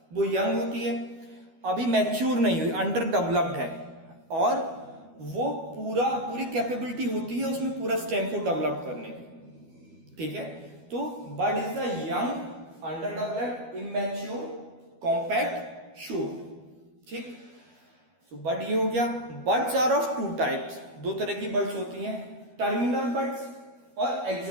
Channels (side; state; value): left; late; 12 ms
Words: वो यंग होती है, अभी मैच्योर नहीं हुई, अंडर डेवलप्ड है, और वो पूरी कैपेबिलिटी होती है उसमें पूरा स्टेम को डेवलप करने की, ठीक है। तो bud is the young under developed immature compact shoot, ठीक। तो बर्ड ये हो गया। Buds are of two types, दो तरह की बर्ड्स होती हैं, टर्मिनल बर्ड्स और